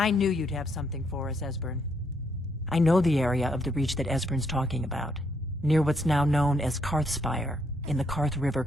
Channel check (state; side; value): normal; both; correlation 0.73